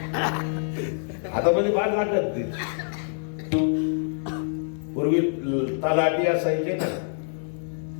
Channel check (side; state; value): right; silent; digital silence